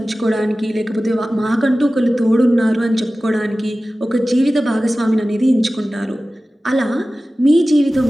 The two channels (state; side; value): normal; both; correlation 0.96